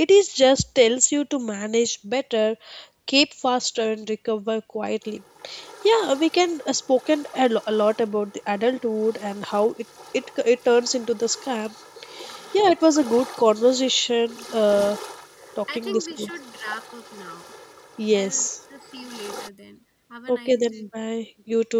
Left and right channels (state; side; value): identical; both; correlation 1.00